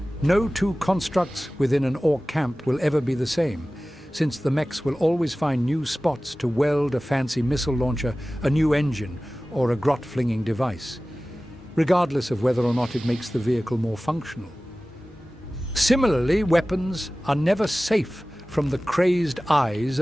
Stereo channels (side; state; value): both; normal; correlation 0.97